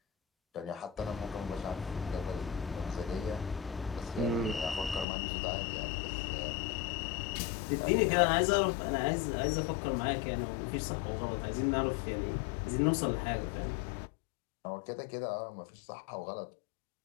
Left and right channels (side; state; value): right; drops out; at 5.1 s